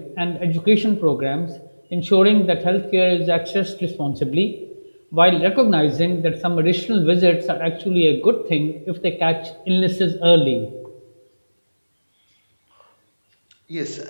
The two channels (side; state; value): both; inverted; correlation -1.00